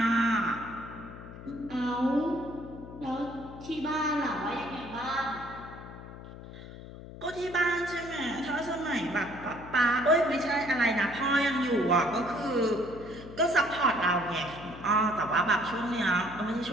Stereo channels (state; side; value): noise; left; hum, 14 dB below the sound